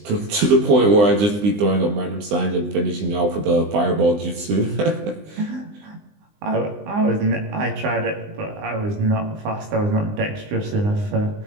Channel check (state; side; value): late; left; 20 ms